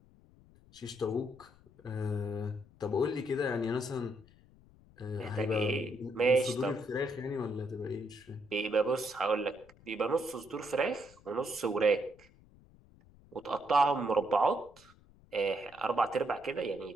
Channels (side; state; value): left; noise; rumble, 26 dB below the sound